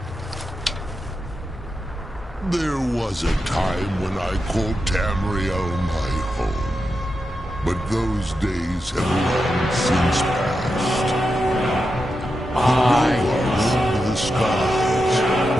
There was a time when I called Tamriel my home. But those days have long since passed. Roamed the skies,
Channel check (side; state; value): both; normal; correlation 0.88